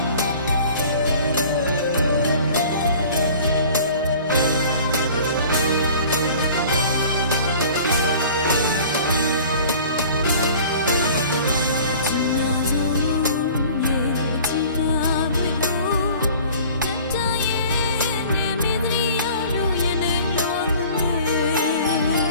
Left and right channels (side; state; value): both; inverted; correlation -0.46